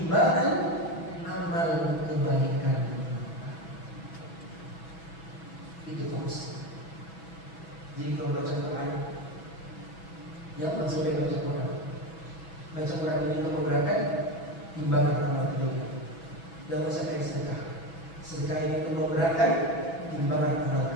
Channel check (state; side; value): late; right; 6.1 ms